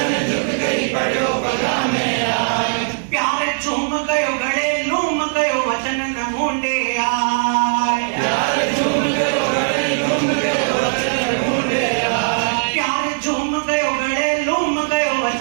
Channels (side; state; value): left; silent; digital silence